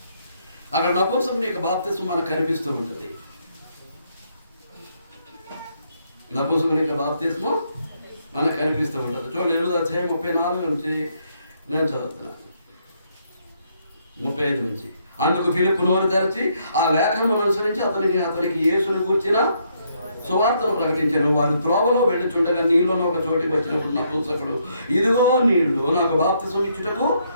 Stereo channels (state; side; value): inverted; both; correlation -0.73